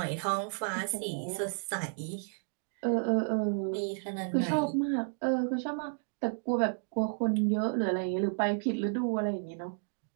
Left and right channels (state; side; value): silent; left; digital silence